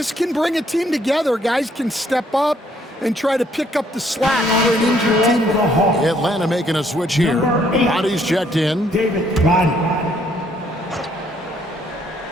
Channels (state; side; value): normal; both; correlation 0.67